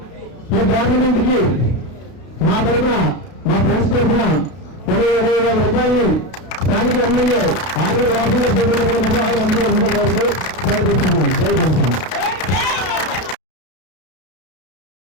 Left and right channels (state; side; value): late; right; 32 ms